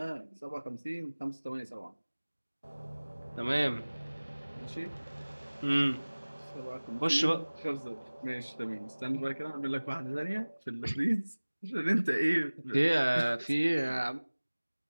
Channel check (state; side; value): inverted; both; correlation -1.00